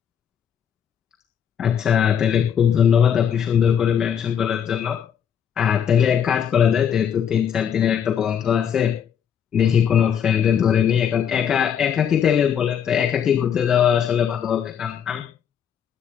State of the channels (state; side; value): quieter; right; 8.4 dB